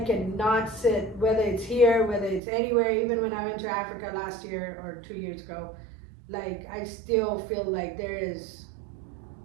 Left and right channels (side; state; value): left; drops out; at 2.4 s